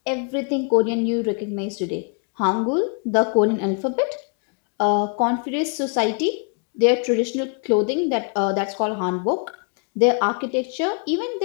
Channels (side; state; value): right; quieter; 38.2 dB